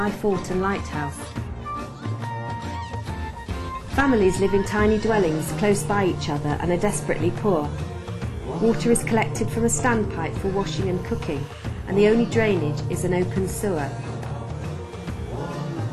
fort and lighthouse. Families live in tiny dwellings close by each other and are desperately poor. Water is collected from a standpipe for washing and cooking, and the only drainage is an open sewer.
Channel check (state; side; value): identical; both; correlation 1.00